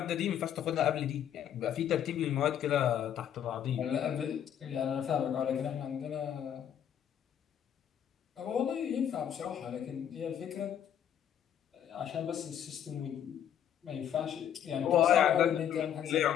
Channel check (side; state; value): right; quieter; 9.6 dB